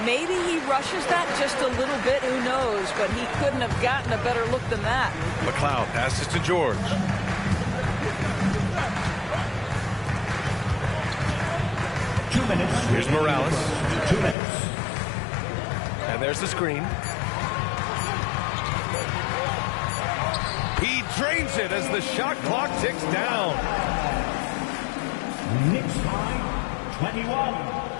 Maybe he rushes that just a little bit. Who knows? But he couldn't have gotten a better look than that. McLeod passes to George. Here's Morales. 2 minutes. And there's the screen. He drains it as the shot clock ticks down. Knicks by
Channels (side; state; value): right; drops out; at 14.4 s